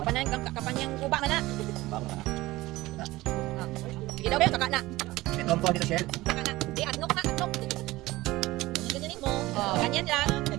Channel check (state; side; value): quieter; left; 18.7 dB